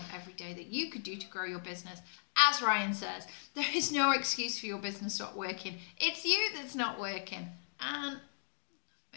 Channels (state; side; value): silent; right; digital silence